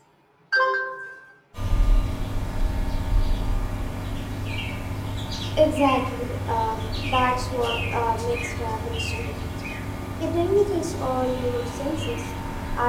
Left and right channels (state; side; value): identical; both; correlation 1.00